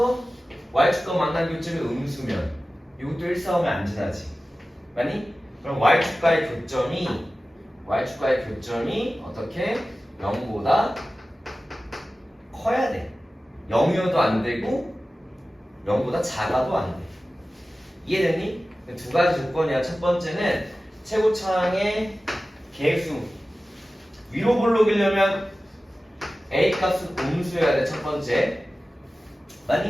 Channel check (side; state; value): both; normal; correlation 0.96